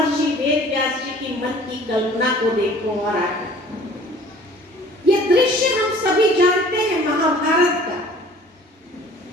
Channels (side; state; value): both; normal; correlation 0.50